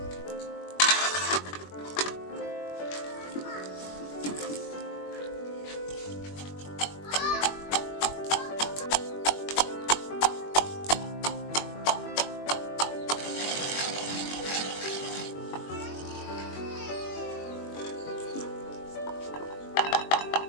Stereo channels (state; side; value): late; right; 21 ms